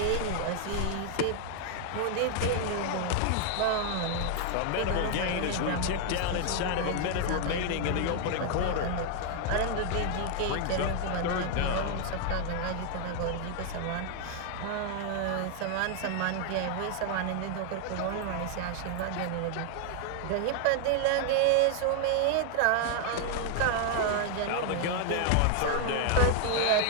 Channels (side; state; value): both; different; correlation 0.00